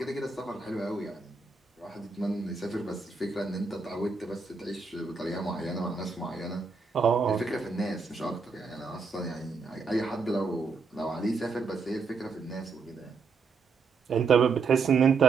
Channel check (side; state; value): left; quieter; 4.6 dB